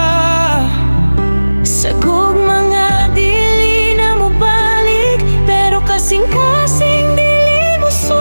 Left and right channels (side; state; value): both; inverted; correlation -1.00